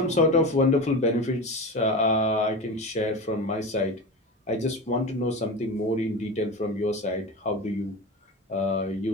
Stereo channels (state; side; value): normal; both; correlation 0.26